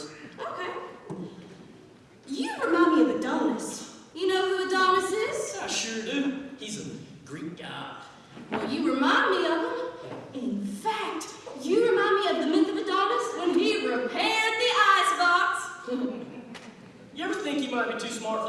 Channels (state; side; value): identical; both; correlation 1.00